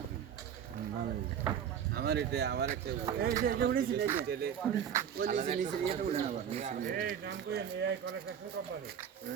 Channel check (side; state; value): left; quieter; 8.6 dB